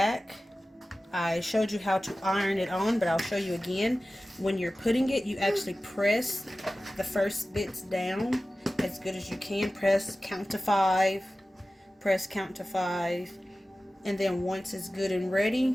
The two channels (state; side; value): normal; both; correlation 0.96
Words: I showed you how to iron it on, but I'll show you again. When you're putting it, you actually press the first bits down as good as you can. Press count to 5, press count to 5, and then once it's good and